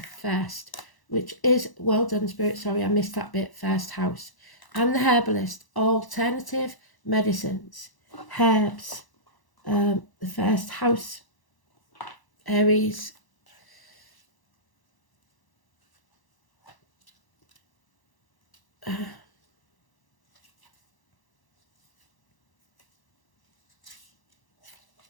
First, which is, well done Spirit, sorry I missed that bit, First House. And the Herbalist, alternative medicines, herbs, the first house, Aries.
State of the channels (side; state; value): right; late; 1.0 ms